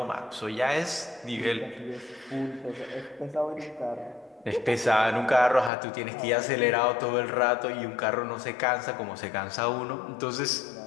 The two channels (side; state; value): right; drops out; at 5.7 s